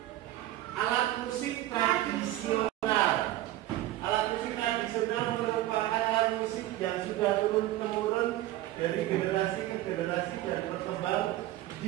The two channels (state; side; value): quieter; left; 15.1 dB